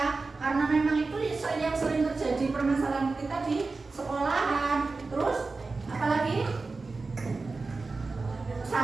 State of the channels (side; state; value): left; quieter; 3.9 dB